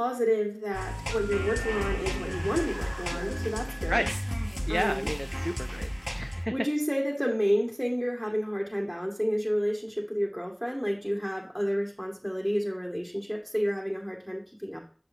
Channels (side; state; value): both; identical; correlation 1.00